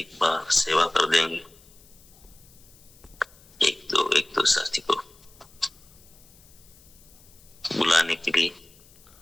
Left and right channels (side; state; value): left; noise; hiss, 26 dB below the sound